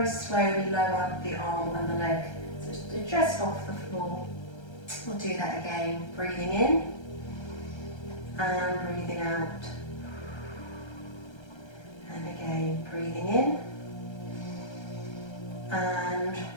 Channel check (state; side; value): late; right; 1.3 ms